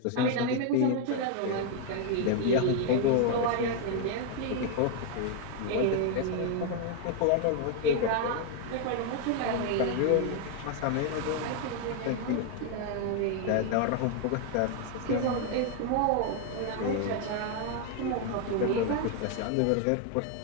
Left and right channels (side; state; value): both; different; correlation 0.00